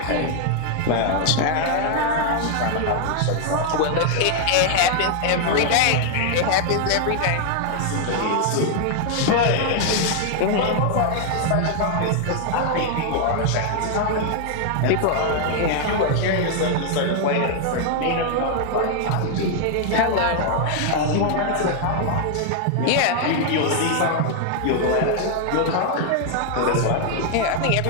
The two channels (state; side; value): different; both; correlation 0.00